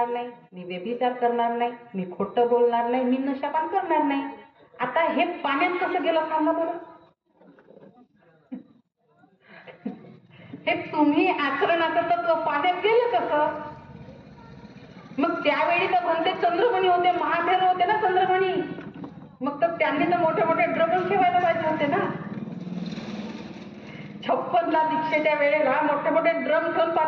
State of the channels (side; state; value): both; identical; correlation 1.00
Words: नाही, मी व्यभिचार करणार नाही, मी खोटं बोलणार नाही, मी नशापान करणार नाही. आता हे पाण्यात कसं गेलं सांगा बरं? हे तुम्ही आचरणाचं तत्व पाण्यात गेलं कसं? मग त्यावेळी तर म्हणते चंद्रमणी होते, महाभैरव होते ना चंद्रमणी. मग तर त्यांनी तर मोठे मोठे ड्रम ठेवायला पाहिजे होते ना. 56ला दीक्षेच्या वेळेला मोठे मोठे ड्रम ठेवून